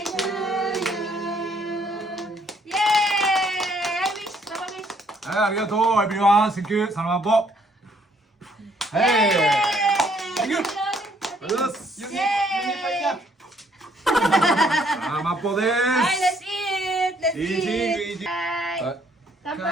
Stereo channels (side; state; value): both; normal; correlation 0.66